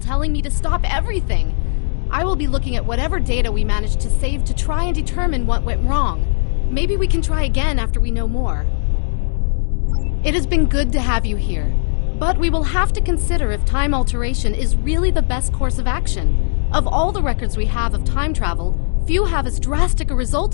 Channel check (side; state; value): right; silent; 67 dB below the other